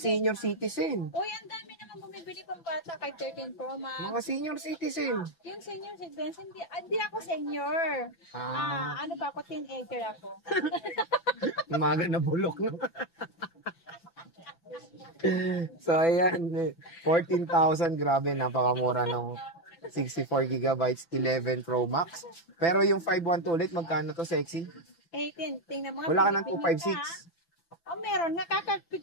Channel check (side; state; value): right; late; 5.9 ms